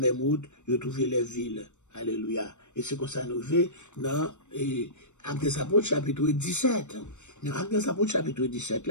route, ils ont trouvé les villes. Alléluia. Et c'est comme ça nous fait dans Actes des Apôtres chapitre 17. Dans Actes des Apôtres chapitre 17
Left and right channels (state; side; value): late; right; 0.84 ms